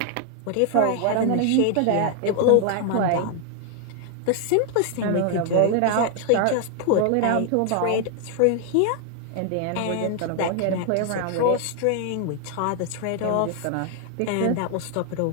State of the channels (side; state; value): both; different; correlation 0.00